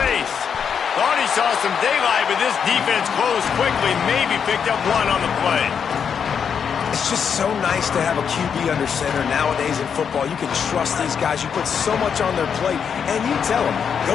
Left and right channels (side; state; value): right; quieter; 7.1 dB